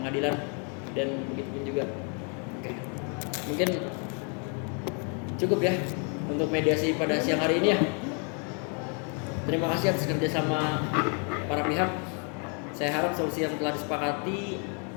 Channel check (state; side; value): quieter; right; 38.7 dB